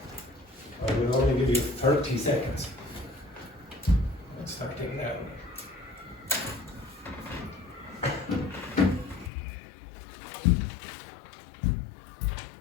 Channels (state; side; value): drops out; right; at 9.3 s